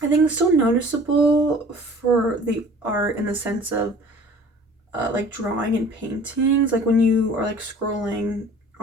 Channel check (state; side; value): normal; both; correlation 0.48